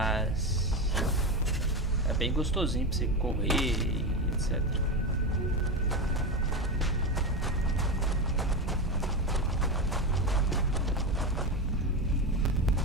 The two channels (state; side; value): normal; both; correlation 0.17